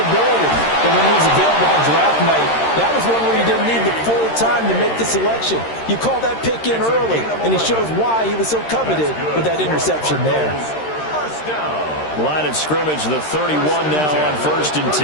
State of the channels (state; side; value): late; right; 13 ms